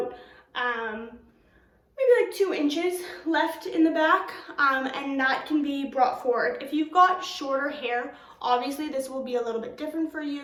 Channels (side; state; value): both; identical; correlation 1.00